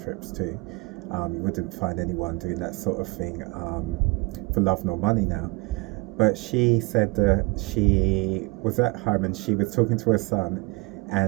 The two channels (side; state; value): left; quieter; 25.7 dB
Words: to. You wouldn't find anyone doing that sort of thing for love nor money now. But she said that she was at home and she was talking to her son,